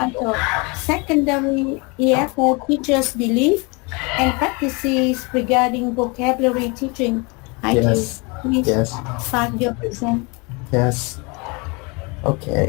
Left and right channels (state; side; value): quieter; right; 29.2 dB